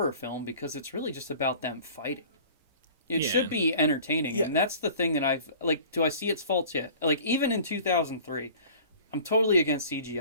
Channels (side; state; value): both; inverted; correlation -0.45